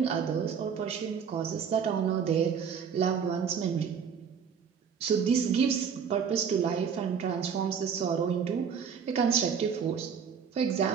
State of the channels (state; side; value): quieter; left; 7.0 dB